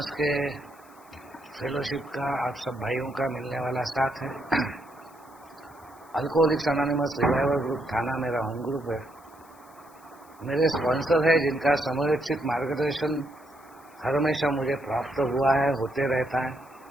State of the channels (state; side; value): noise; left; hiss, 28 dB below the sound